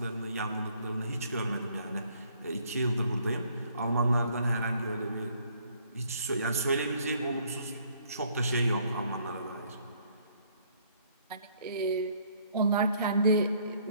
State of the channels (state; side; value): inverted; both; correlation -0.64